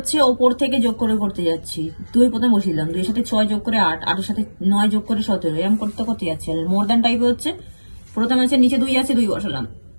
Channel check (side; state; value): both; inverted; correlation -1.00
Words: ওপর থেকে যোগ করে করতে যাচ্ছি, 2 প্রথমে বসিলাম, 2 এর সাথে 6 যোগ করে 8, 8 এর সাথে 9 যোগ করে 17, এরকম করতে করতে যাচ্ছি। আর মোর দ্যান টাইপে হচ্ছে প্রথমে হচ্ছে নিচে 2 আছে, 2 বসালাম,